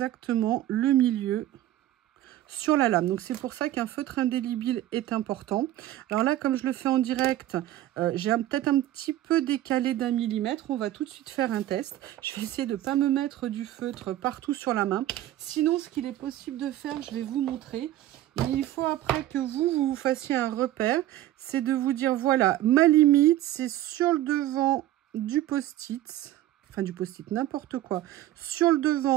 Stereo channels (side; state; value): left; quieter; 13.9 dB